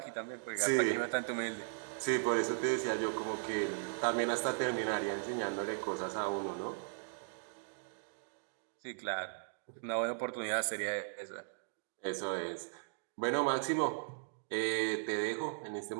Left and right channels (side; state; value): left; silent; digital silence